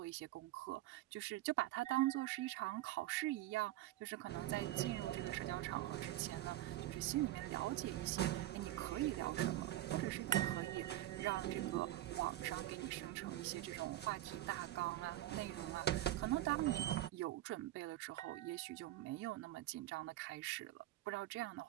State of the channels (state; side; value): quieter; left; 15.0 dB